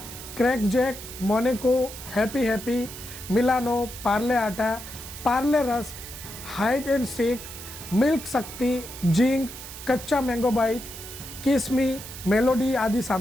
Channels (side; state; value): right; noise; hiss, 12 dB below the sound